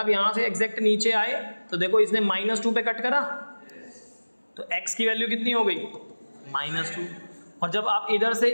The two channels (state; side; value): inverted; both; correlation -1.00